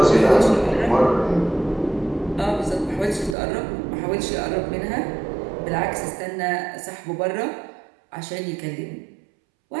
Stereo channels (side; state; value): left; drops out; at 3.4 s